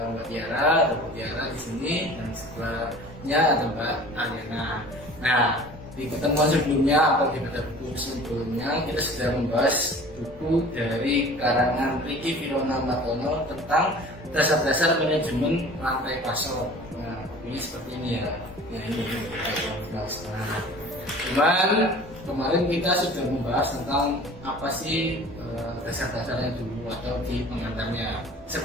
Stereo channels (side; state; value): both; normal; correlation 0.44